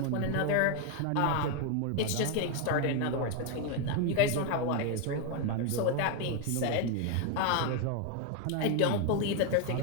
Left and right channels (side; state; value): both; different; correlation 0.01